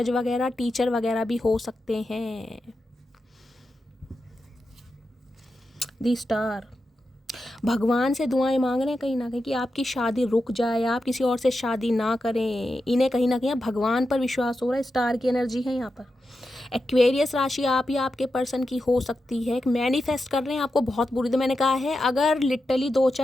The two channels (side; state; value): both; normal; correlation 0.89